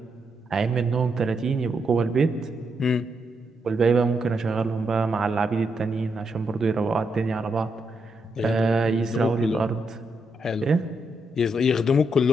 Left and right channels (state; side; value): normal; both; correlation 0.80